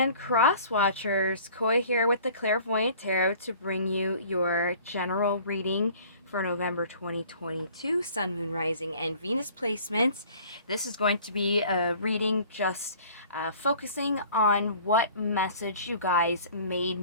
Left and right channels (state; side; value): inverted; both; correlation -0.50